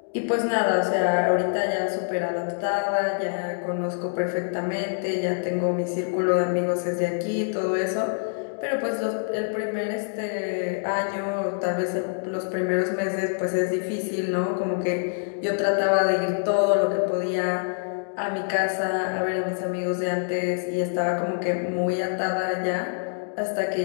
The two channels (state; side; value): silent; right; digital silence